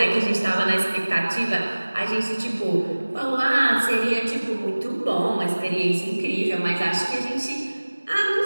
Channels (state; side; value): inverted; both; correlation -1.00